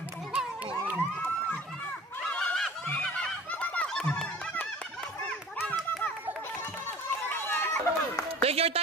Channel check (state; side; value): normal; both; correlation 0.43